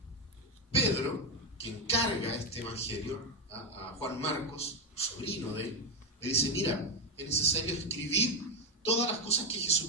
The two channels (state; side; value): normal; both; correlation 0.07